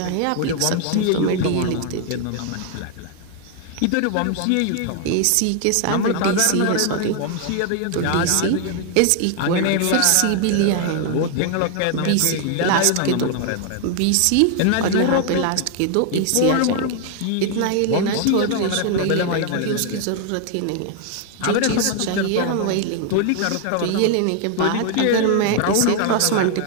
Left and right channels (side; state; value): both; different; correlation 0.00